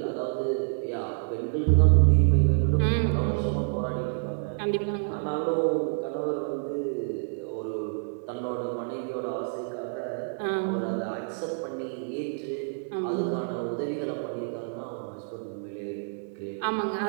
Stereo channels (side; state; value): left; silent; digital silence